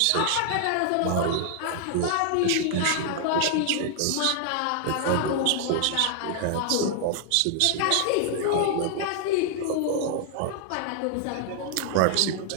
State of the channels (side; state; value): both; different; correlation 0.00